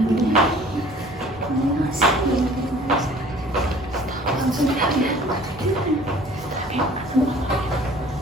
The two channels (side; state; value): right; noise; hum, 20 dB below the sound